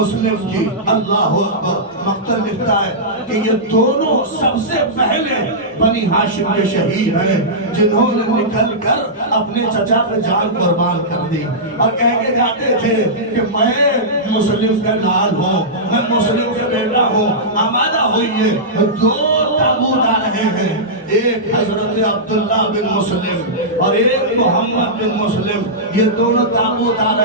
کی، اللہ اکبر، مقتل لکھتا ہے کہ یہ دونوں سب سے پہلے بنی ہاشم کے شہید ہیں جنہوں نے نکل کر اپنے چچا پہ جان قربان کر دی اور کہہ کے جاتے تھے کہ میں مسلم کا لال ہوں، میں مسلم کا بیٹا ہوں۔ آمادہ ہوئیے، دو تابوت آ رہے ہیں، ایک حضرت عبداللہ بن مسلم اور ایک محمد بن مسلم، یہ دونوں تابوت آ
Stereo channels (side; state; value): both; normal; correlation -0.14